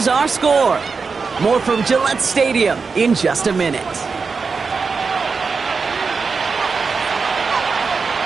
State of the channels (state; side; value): quieter; left; 4.9 dB